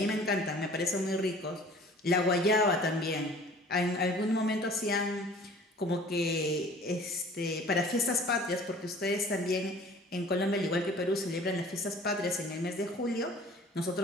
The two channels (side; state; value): both; normal; correlation 0.48